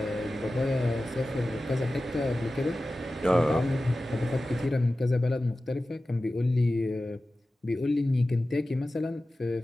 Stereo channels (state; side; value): normal; both; correlation 0.95